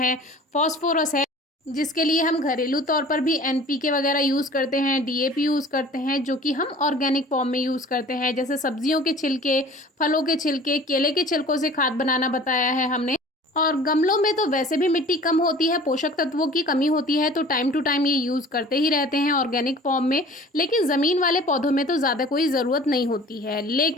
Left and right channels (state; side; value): normal; both; correlation 0.45